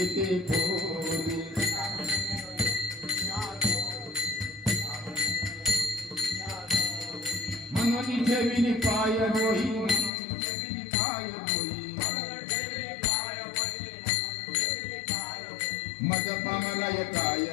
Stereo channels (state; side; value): drops out; right; at 10.1 s